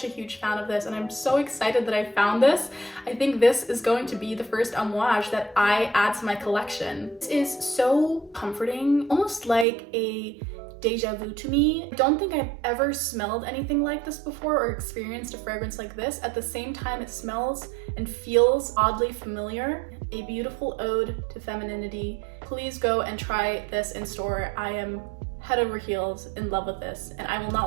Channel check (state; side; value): drops out; left; at 9.7 s